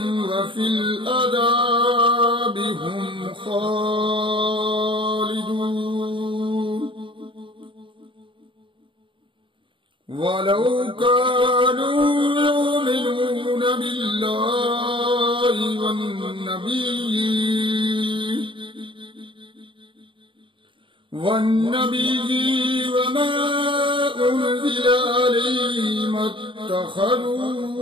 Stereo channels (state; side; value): late; left; 0.24 ms